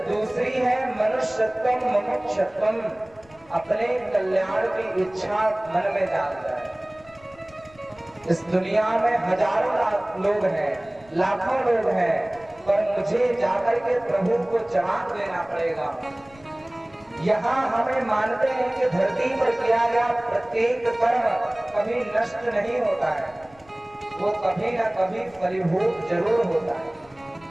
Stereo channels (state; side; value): noise; left; rumble, 27 dB below the sound